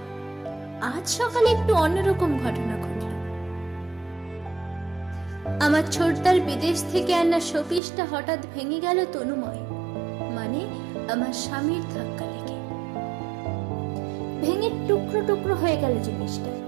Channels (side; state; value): left; drops out; at 7.8 s